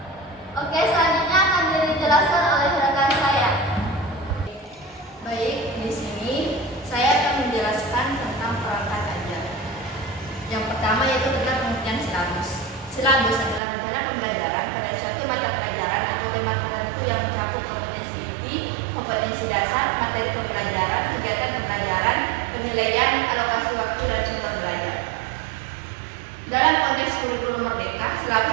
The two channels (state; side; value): drops out; left; at 13.6 s